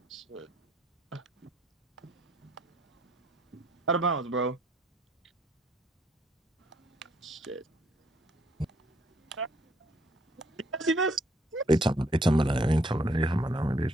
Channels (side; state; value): both; normal; correlation 0.67